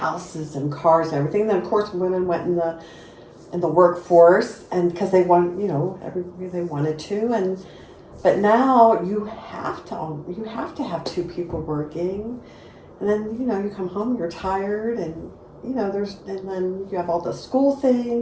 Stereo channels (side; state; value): both; identical; correlation 1.00